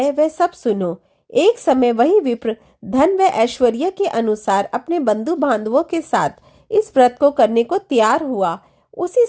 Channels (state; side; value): identical; both; correlation 1.00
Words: वह सब सुनो। एक समय वही विप्र धन व ऐश्वर्य के अनुसार अपने बंधु बांधवों के साथ इस व्रत को करने को तैयार हुआ। उसी